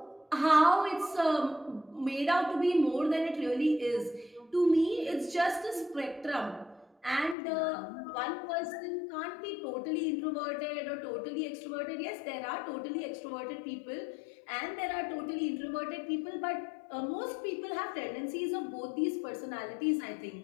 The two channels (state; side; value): drops out; right; at 7.4 s